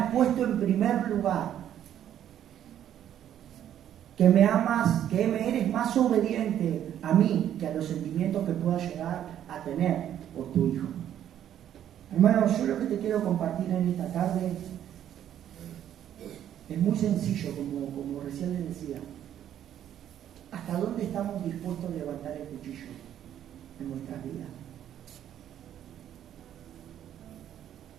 puesto en primer lugar, que me amas, que me eres más obediente a mí que a los sentimientos que pueda llegar a tener por tu hijo. Hermanos, yo lo que te quiero compartir en esta tarde es muy sencillo, como recién les decía. ¿Hasta dónde estamos dispuestos a levantar el cuchillo en nuestras vidas?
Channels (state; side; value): quieter; left; 10.6 dB